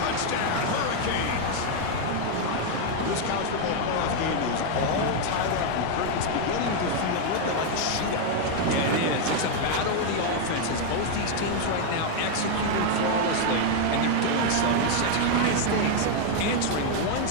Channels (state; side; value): different; both; correlation 0.00